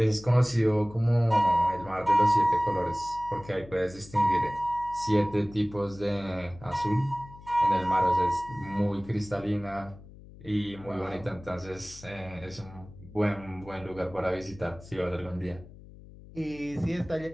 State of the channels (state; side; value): noise; left; hum, 19 dB below the sound